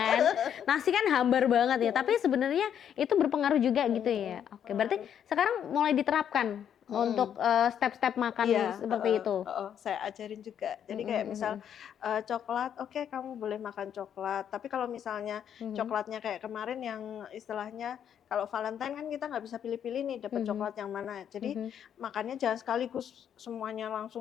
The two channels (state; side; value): quieter; right; 9.0 dB